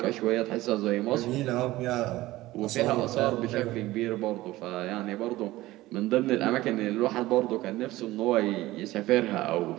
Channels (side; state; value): left; quieter; 17.5 dB